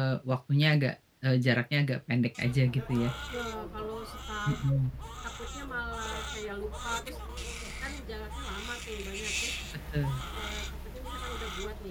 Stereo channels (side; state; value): both; identical; correlation 1.00